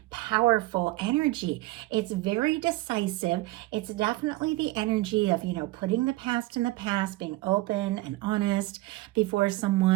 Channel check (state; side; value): quieter; left; 19.5 dB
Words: powerful energy. It's very decisive. It's definitely the energy of, putting the past in the past, being open and honest before